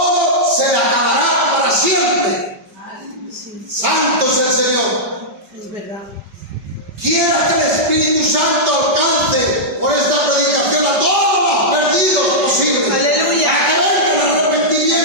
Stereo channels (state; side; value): late; left; 5.1 ms